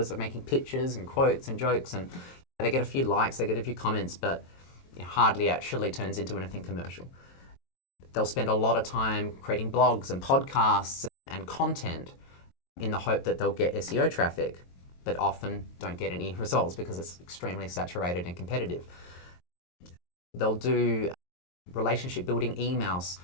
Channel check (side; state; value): right; late; 22 ms